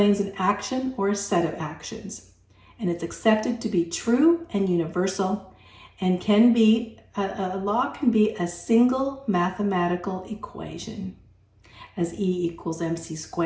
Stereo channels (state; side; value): identical; both; correlation 1.00